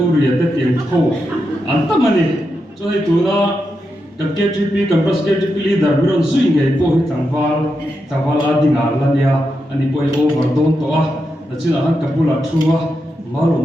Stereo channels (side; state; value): both; normal; correlation 0.86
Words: ate tiang kho anta mani so hi tuna kan KTP kan pras KTP leader biron zui ngai po hi tangwal adinga lania ani poi over don to na china han kapula thua malo